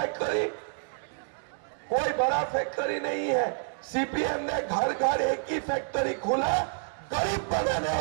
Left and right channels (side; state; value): left; silent; digital silence